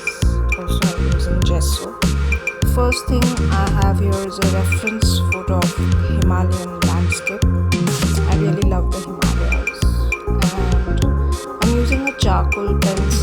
Also I'm using gesso. First thing I have here is a reference photo of Himalayan landscape. I really love the Himalayas. And I'm using a charcoal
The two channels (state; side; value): identical; both; correlation 1.00